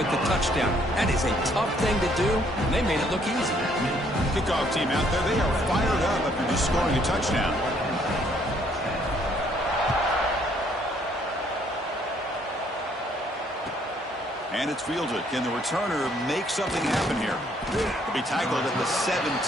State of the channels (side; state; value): both; normal; correlation 0.66